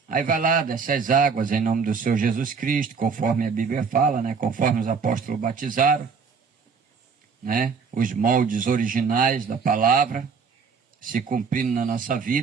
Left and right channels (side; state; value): left; quieter; 5.6 dB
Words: Aí vai lá, desce as águas em nome do Senhor Jesus Cristo, conforme a Bíblia fala, né? Conforme os apóstolos batizaram, né? Os moldes originais da palavra se cumprindo na nossa